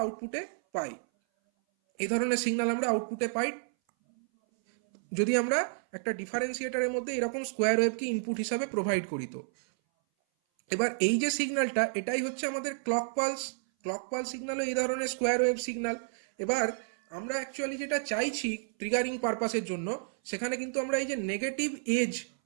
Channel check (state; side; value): silent; left; 57 dB below the other